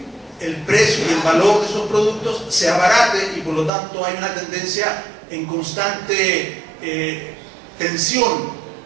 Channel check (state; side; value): drops out; left; at 3.7 s